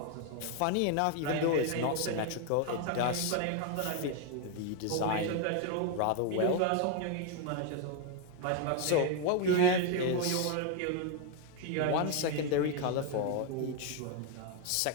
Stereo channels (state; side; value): different; both; correlation 0.01